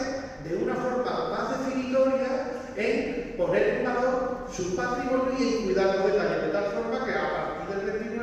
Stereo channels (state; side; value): identical; both; correlation 1.00